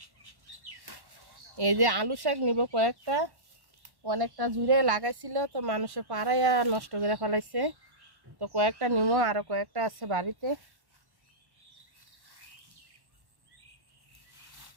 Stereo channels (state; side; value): late; left; 1.1 ms